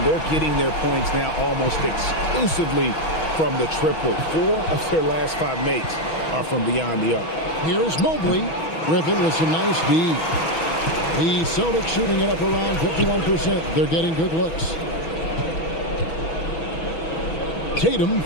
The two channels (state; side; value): late; right; 6.2 ms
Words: they're getting their points now almost exclusively from the triple. 4 of their last 5 makes are from beyond the arc. Here's Mobley. Griffin with some nice D. The Celtics shooting it up around 51%. They're getting good looks. Tatum